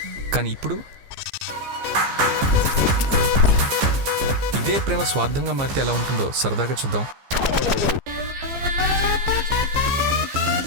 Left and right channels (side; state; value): left; late; 15 ms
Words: కానీ ఇప్పుడు ఇదే ప్రేమ స్వార్థంగా మారితే ఎలా ఉంటుందో సరదాగా చూద్దాం.